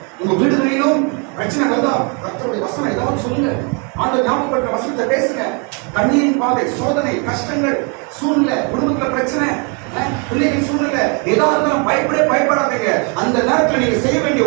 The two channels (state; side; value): quieter; left; 35.5 dB